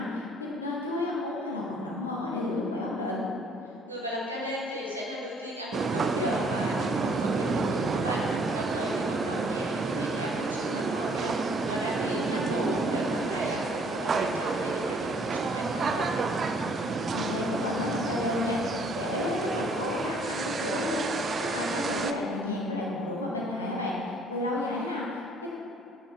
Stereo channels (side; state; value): both; normal; correlation 0.60